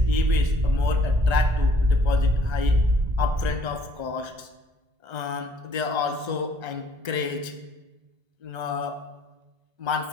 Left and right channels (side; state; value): left; late; 1.3 ms